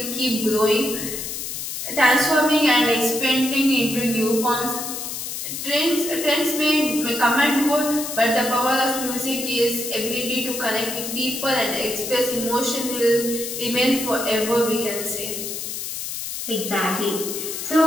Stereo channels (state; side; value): noise; left; hiss, 6 dB below the sound